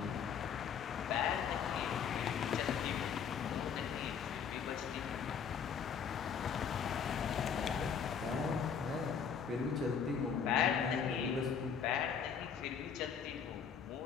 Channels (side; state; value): right; quieter; 7.0 dB